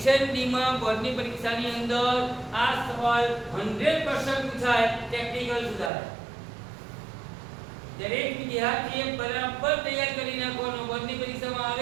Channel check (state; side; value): drops out; left; at 5.9 s